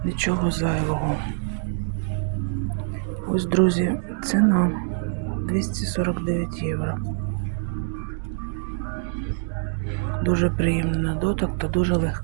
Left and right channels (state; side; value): silent; left; 62 dB below the other